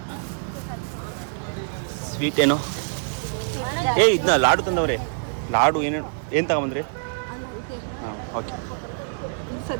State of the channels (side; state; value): left; silent; digital silence